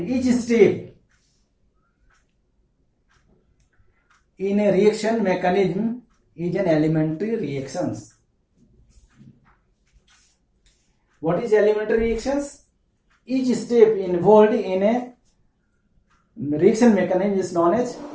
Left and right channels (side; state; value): both; identical; correlation 1.00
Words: each step in a reaction mechanism is an elementary reactions. What is elementary reactions? Each step involved in a reaction mechanism